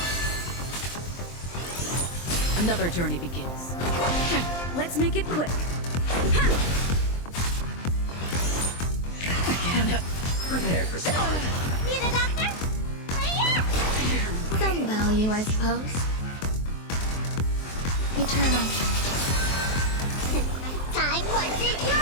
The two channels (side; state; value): right; late; 23 ms